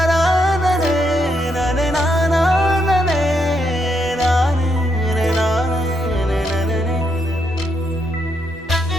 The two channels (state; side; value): normal; both; correlation 0.78